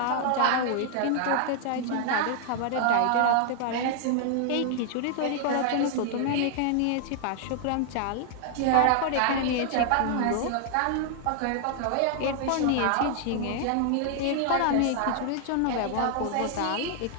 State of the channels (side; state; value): both; different; correlation 0.00